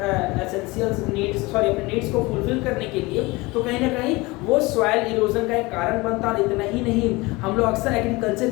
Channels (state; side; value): quieter; right; 23.0 dB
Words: एसेंशियल नीड्स, सॉरी अपने नीड्स को फुलफिल करने के लिए, तो कहीं ना कहीं वो सॉइल इरोजन का एक कारण बनता है। इतना ही नहीं, हम लोग अक्सर एग्रीकल्चर